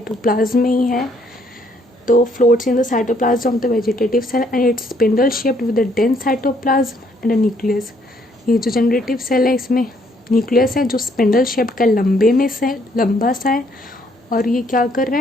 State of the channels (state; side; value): normal; both; correlation 0.68